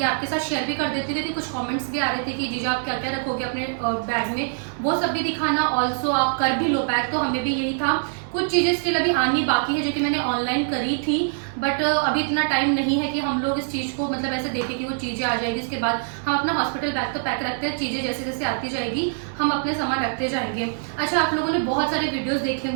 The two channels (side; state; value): left; silent; digital silence